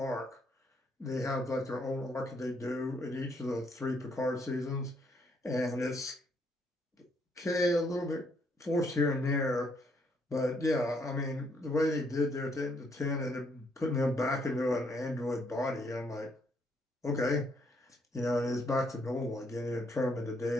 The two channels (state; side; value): normal; both; correlation 0.72